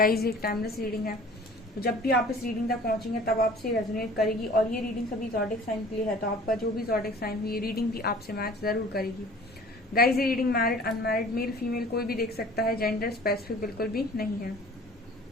एक टाइमलेस रीडिंग है, तो जब भी आप इस रीडिंग तक पहुंचेंगे तब आपसे रेजोनेट करेगी। और ये रीडिंग सभी ज़ोडिक साइन के लिए है, तो आपका जो भी ज़ोडिक साइन हुई ये रीडिंग भी आपसे मैच जरूर करेगी। गाइज, ये reading married unmarried male female कोई भी देख सकता है, जेंडर स्पेसिफिक बिल्कुल भी नहीं है।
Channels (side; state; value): both; normal; correlation 0.47